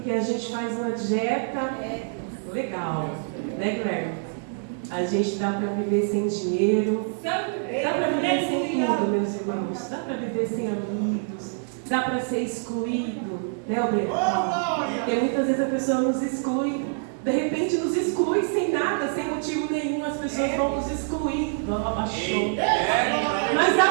a gente faz uma dieta legal, né, Guilherme? A gente dá para viver sem dinheiro, dá para viver sem tudo, meus irmãos. Dá para viver sem amigos, dá para ser excluído, né, Alberto? Porque muitas vezes a pessoa nos exclui. De repente nos exclui sem nada, sem motivo nenhum, as pessoas vão nos excluir. Abaixou. Mas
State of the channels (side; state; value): left; silent; digital silence